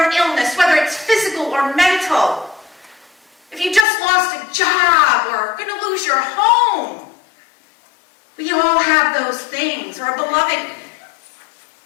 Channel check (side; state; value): right; drops out; at 3.9 s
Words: illness, whether it's physical or mental. If you just lost a job or are going to lose your home, we all have those things. Or a beloved